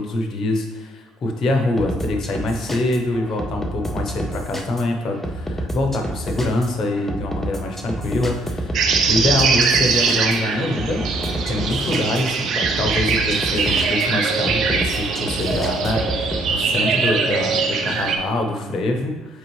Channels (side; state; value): both; normal; correlation 0.67